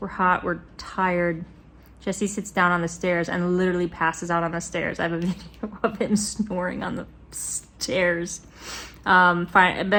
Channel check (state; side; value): identical; both; correlation 1.00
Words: hot, we're tired. Jesse sits down on the stairs and literally passes out on the stairs. I have a video of him snoring on the stairs. Fine,